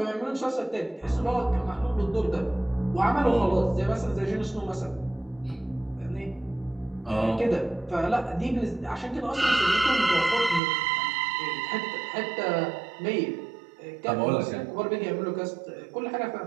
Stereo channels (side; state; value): left; drops out; at 10.6 s